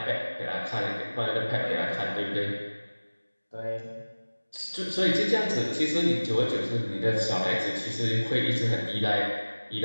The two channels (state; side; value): inverted; both; correlation -1.00